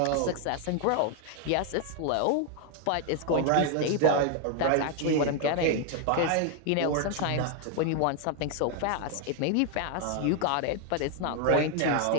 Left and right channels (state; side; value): different; both; correlation 0.00